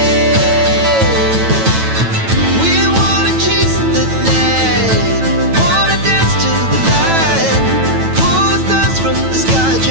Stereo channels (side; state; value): left; late; 9.1 ms